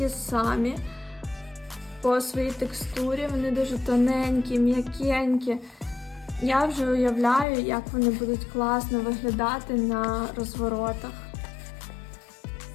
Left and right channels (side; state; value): right; drops out; at 7.5 s